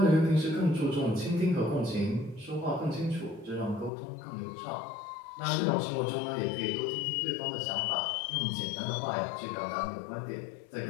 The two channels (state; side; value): drops out; right; at 3.9 s